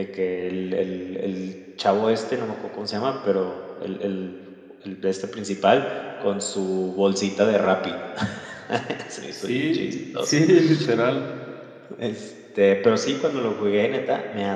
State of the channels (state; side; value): identical; both; correlation 1.00